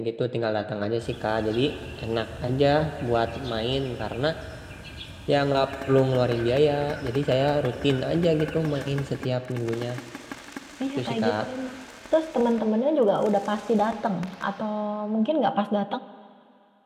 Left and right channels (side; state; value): both; identical; correlation 1.00